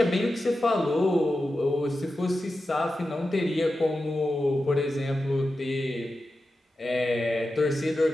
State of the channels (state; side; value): normal; both; correlation 0.91